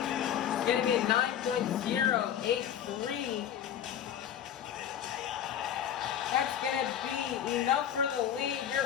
It's going to be a 9.083. That's going to be enough for the lead. Your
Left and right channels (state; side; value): quieter; right; 9.7 dB